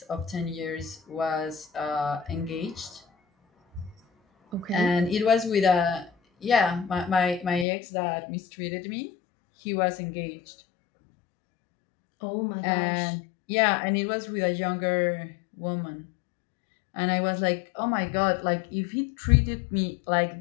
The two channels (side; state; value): right; drops out; at 7.7 s